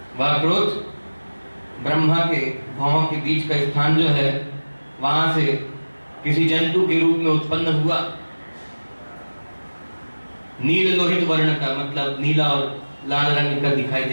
वह क्रोध ब्रह्मा के भौहों के बीच का स्थान जो है, वहां से किसी जंतु के रूप में उत्पन्न हुआ। नील लोहित वर्ण का, मतलब नीला और लाल रंग का दिखाई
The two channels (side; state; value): both; inverted; correlation -1.00